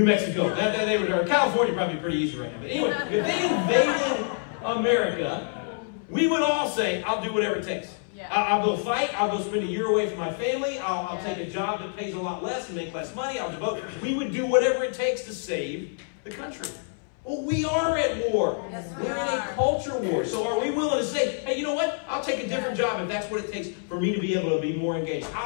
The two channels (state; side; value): silent; right; 60 dB below the other